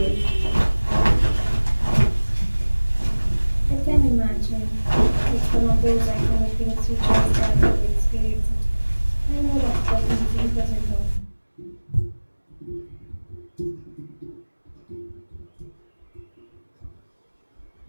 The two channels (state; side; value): inverted; both; correlation -1.00